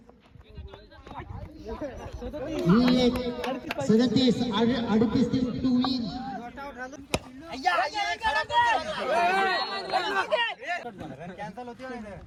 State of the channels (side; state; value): both; identical; correlation 1.00